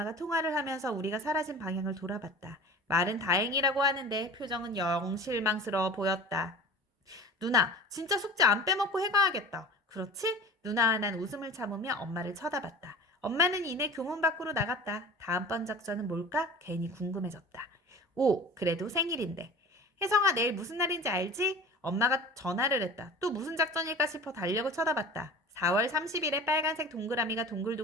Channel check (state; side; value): normal; both; correlation 0.38